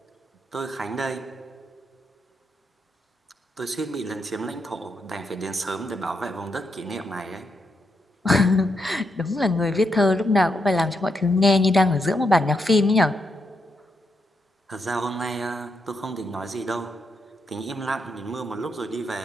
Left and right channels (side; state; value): both; normal; correlation 0.82